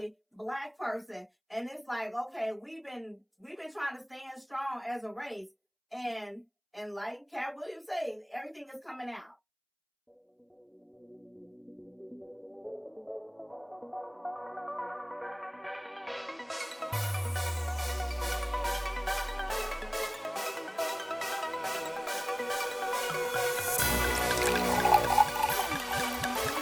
black person. And it's like, okay, we've been trying to stand strong as a race. And like Cat Williams said, everything is coming out.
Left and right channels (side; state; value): both; identical; correlation 1.00